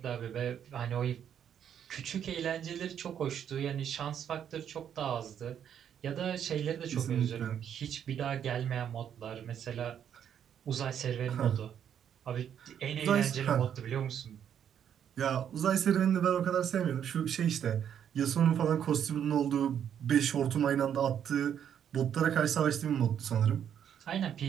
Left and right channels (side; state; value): left; quieter; 9.0 dB